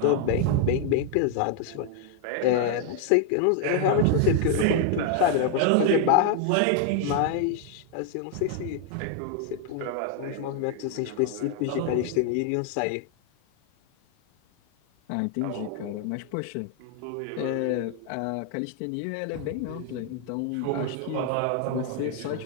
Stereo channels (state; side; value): different; both; correlation 0.00